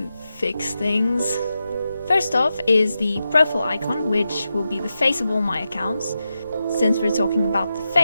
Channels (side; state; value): both; inverted; correlation -0.89